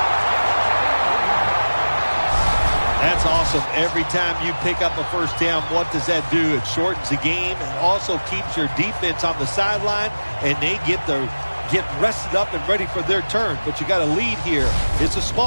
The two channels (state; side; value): inverted; both; correlation -1.00